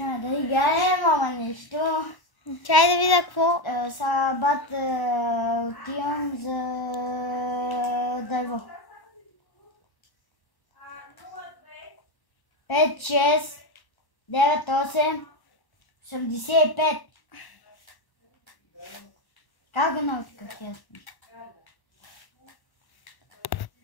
да играем, ама нещо. Чай да видя какво. Сега бат отивам за дърво. 5, 6, 9, 8, 85. Как го научихах ясно?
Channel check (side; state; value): right; late; 1.1 ms